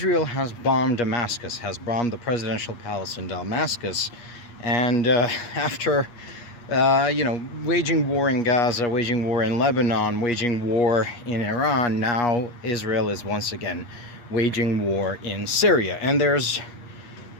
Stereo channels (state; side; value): late; right; 8.4 ms